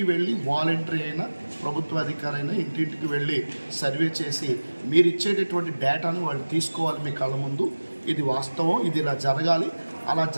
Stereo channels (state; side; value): inverted; both; correlation -1.00